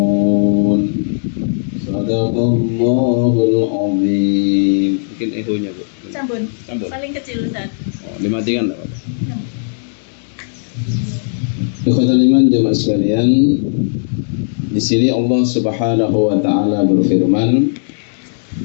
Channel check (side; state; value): right; silent; digital silence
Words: صدق الله العظيم. Mungkin ehonya Bu. Sambun. Paling kecil Ustaz. Dimatikan enggak apa-apa. Ikhwatul iman, jemaah sekalian, di sini Allah Subhanahu wa taala berfirman